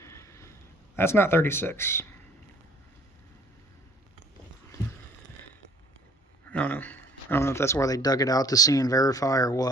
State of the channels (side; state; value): both; normal; correlation 0.55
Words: That's not 36. I don't know. I don't know if that's where they dug it out to see and verify or